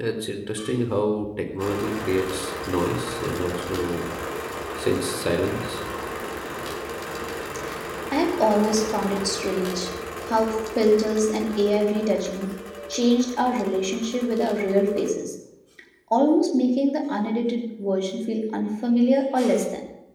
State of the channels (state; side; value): identical; both; correlation 1.00